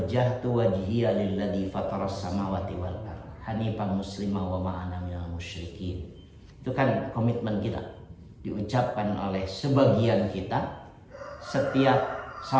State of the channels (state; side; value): identical; both; correlation 1.00